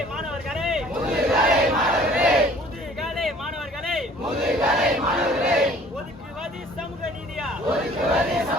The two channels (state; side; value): normal; both; correlation 0.52